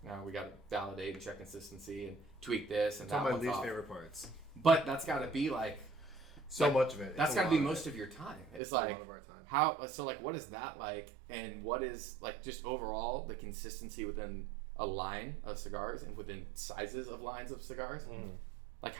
Now we got to validate and check consistency and tweak this and it's that. One of my least off. favorite parts. But that's got to be so much of it. That's got to be most of your time. It's a lot of our time. What is that like? And what is just overall the consistency within a line of cigars and within sizes of lines of cigars? Mm.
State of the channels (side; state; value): left; drops out; at 8.6 s